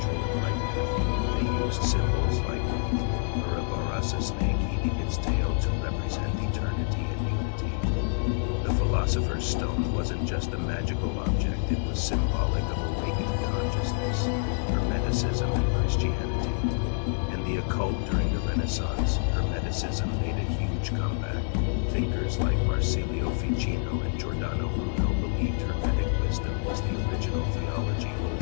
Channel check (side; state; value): right; silent; 59 dB below the other